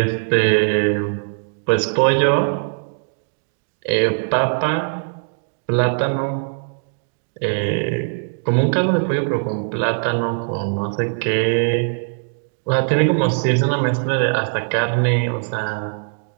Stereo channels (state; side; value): silent; left; digital silence